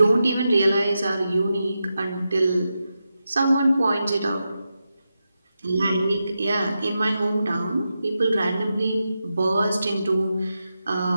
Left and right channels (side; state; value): both; inverted; correlation -0.89